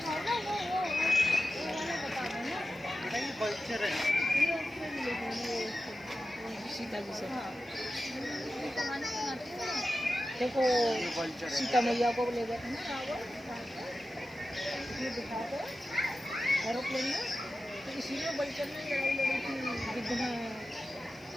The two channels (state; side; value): noise; right; hiss, 30 dB below the sound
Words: देखो सीता मैया को ले गए थे ना दिखाते एरोप्लेन में, तो इसी में बल्चर में लड़ाई लड़ी थी गिद्ध में।